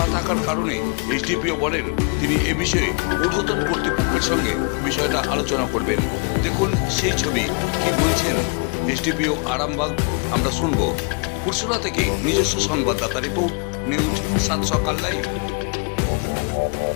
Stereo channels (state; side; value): quieter; right; 35.2 dB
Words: থাকার কারণে এসডিপিও বলেন তিনি এ বিষয়ে ঊর্ধ্বতন কর্তৃপক্ষের সঙ্গে বিষয়টা আলোচনা করবেন। দেখুন সেই ছবি, কি বলছেন এসডিপিও আরামবাগ আমরা শুনবো। পুরসুরা থেকে নিজস্ব সংবাদদাতা রিপোর্ট, নিউজ 7 সকাল লাইভ।